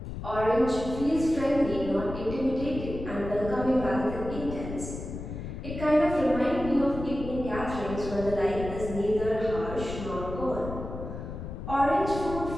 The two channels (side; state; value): left; noise; rumble, 8 dB below the sound